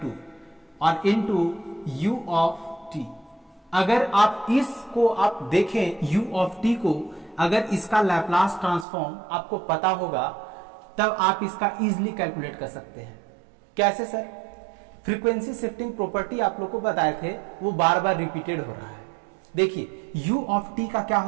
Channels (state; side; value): drops out; left; at 8.8 s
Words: और इनटू यू ऑफ टी। अगर आप इसको आप देखें यू ऑफ टी को, अगर इसका लैप्लास ट्रांसफॉर्म आपको पता होगा तब आप इसका इजीली कैलकुलेट कर सकते हैं। कैसे सर, फ्रीक्वेंसी शिफ्टिंग प्रॉपर्टी आप लोग को बताए थे, वो बार बार रिपीटेड हो रहा है। देखिए u ऑफ t का क्या